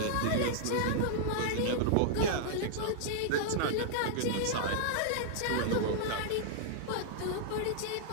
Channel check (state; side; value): different; both; correlation -0.01